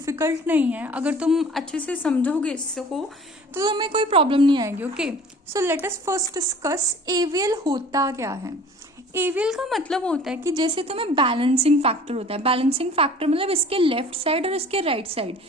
नहीं है. अगर तुम अच्छे से समझोगे इसको तो तुम्हें कोई प्रॉब्लम नहीं आएगी. Okay, so let us first discuss AVL होता क्या है. एवीएल का मतलब होता है कि जैसे तुम्हें बैलेंसिंग फैक्टर होता है. बैलेंसिंग फैक्टर मतलब इसके लेफ्ट साइड और इसके राइट साइड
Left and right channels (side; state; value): both; normal; correlation 0.47